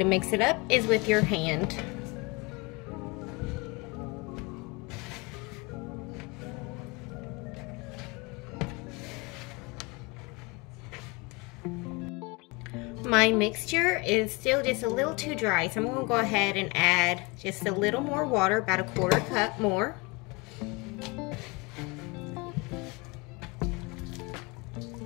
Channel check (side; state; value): right; quieter; 26.4 dB